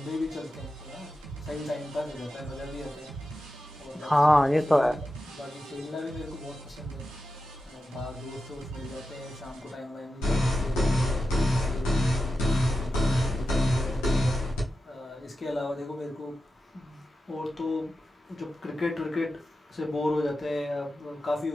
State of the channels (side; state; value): both; normal; correlation 0.91